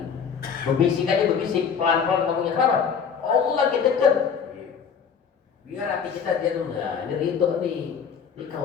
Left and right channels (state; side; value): quieter; right; 6.8 dB